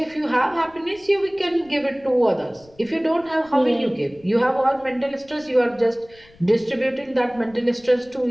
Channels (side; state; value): left; noise; rumble, 27 dB below the sound